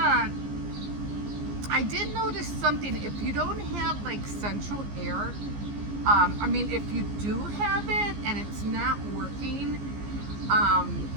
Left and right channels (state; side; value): late; left; 15 ms